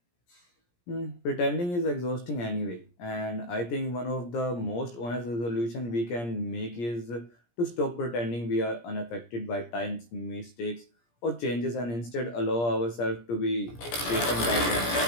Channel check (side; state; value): right; late; 17 ms